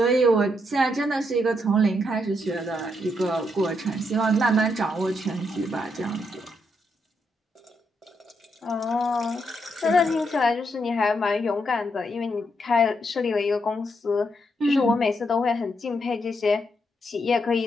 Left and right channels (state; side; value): normal; both; correlation 0.78